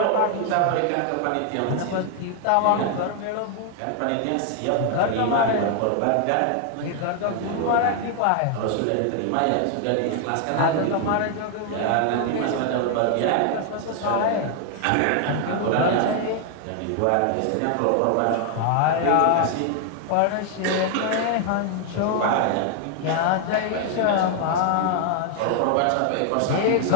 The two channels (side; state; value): both; different; correlation 0.00